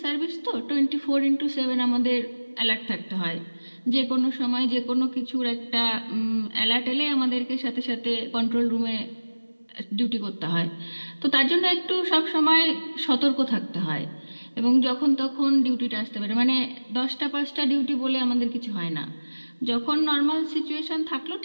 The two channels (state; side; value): inverted; both; correlation -1.00